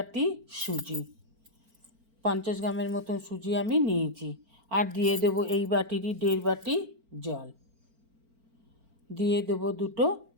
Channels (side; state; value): left; late; 4.4 ms